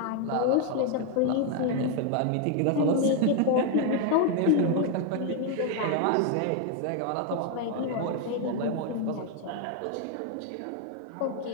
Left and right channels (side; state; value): both; different; correlation 0.01